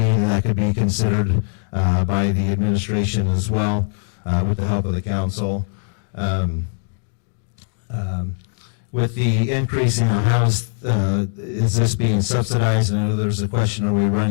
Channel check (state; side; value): silent; right; digital silence